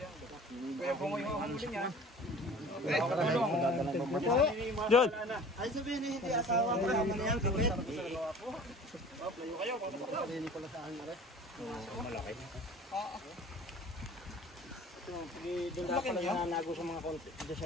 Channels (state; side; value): normal; both; correlation 0.45